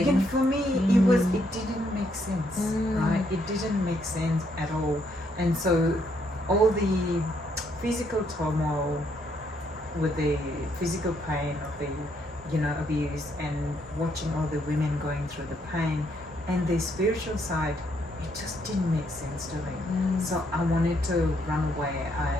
Again, for me, it didn't make sense, right? It didn't make sense at all. And so all the physical turmoil with the physical pain of the, abuse, and watching all the women going through the pain, and the spiritual side, it just didn't make sense to me. So I wanted to run away,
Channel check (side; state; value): both; normal; correlation 0.73